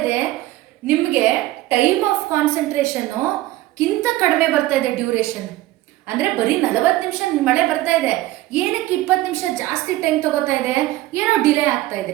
ಇದೆ, ನಿಮಗೆ ಟೈಮ್ ಆಫ್ ಕಾನ್ಸಂಟ್ರೇಷನ್ನು ಕಿಂತ ಕಡಿಮೆ ಬರ್ತಾ ಇದೆ ಡ್ಯೂರೇಷನ್. ಅಂದರೆ ಬರೀ 40 ನಿಮಿಷ ಮಳೆ ಬರ್ತಾ ಇದೆ, ಏನಕ್ಕೆ 20 ನಿಮಿಷ ಜಾಸ್ತಿ ಟೈಮ್ ತಗೋತಾ ಇದೆ? ಏನೋ ಡಿಲೇ ಆಗ್ತಾ ಇದೆ,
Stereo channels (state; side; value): quieter; left; 16.5 dB